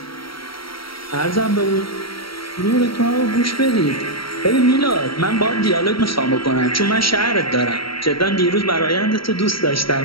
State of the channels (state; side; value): late; right; 0.74 ms